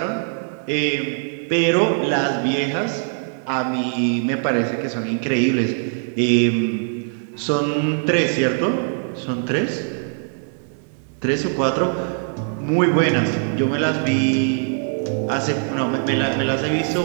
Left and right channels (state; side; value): silent; left; 63 dB below the other